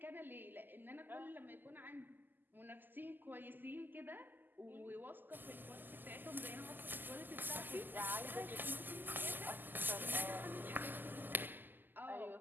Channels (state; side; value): late; left; 0.089 ms